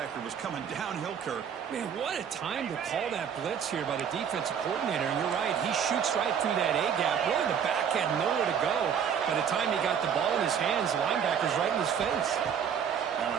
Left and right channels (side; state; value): left; quieter; 7.9 dB